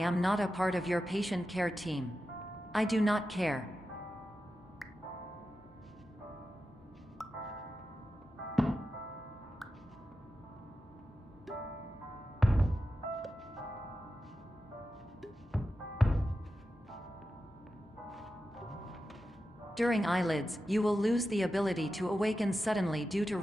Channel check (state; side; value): normal; both; correlation 0.91